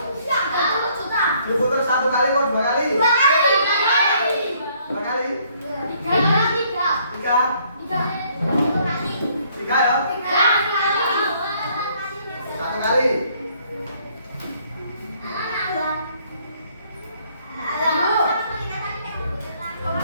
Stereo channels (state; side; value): inverted; both; correlation -0.65